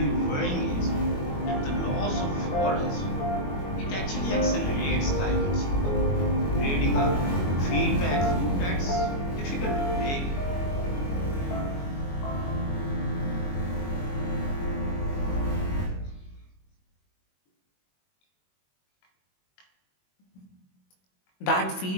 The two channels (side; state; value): right; late; 21 ms